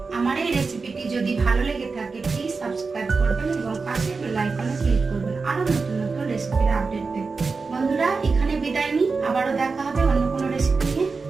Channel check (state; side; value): quieter; left; 4.4 dB